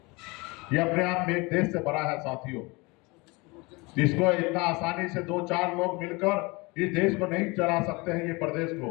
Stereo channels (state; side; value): quieter; right; 25.6 dB